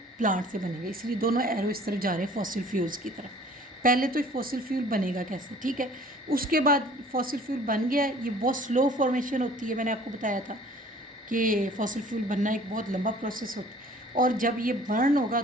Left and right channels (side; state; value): both; normal; correlation 0.51